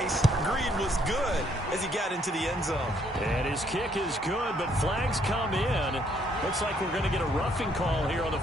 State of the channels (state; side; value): normal; both; correlation 0.68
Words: greed was good as he got into the end zone. And his kick is good, but flags come in. Looks like we're going to get a roughing call here on